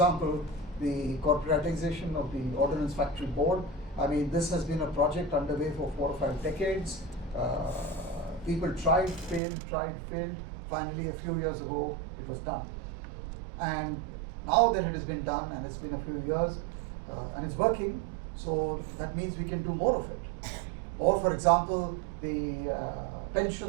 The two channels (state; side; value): drops out; left; at 9.4 s